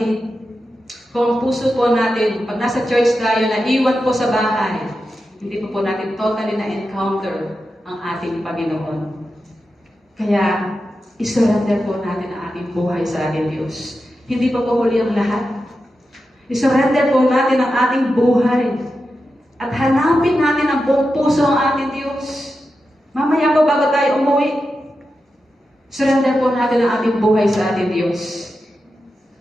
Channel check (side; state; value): both; normal; correlation 0.90